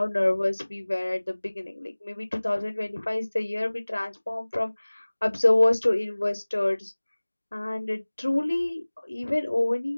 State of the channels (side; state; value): both; inverted; correlation -1.00